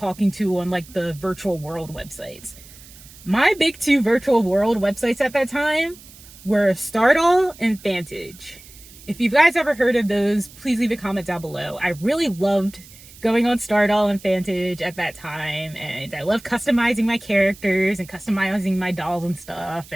to on like the virtual world websites. My big two virtual world websites at that time were Stardoll and Fantage. If you guys ever heard of those, please leave a comment down below. I really loved going on Stardoll and Fantage at that time, and I loved customizing my characters and customizing my dolls and stuff,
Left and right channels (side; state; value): right; noise; hiss, 21 dB below the sound